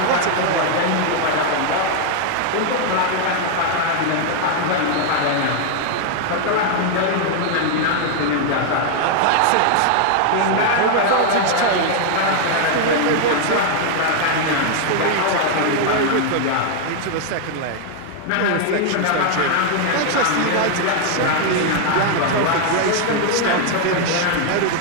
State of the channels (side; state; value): both; different; correlation 0.00